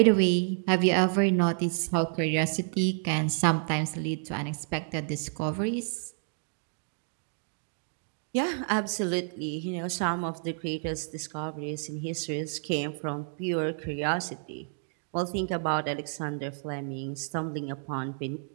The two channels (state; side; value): silent; left; digital silence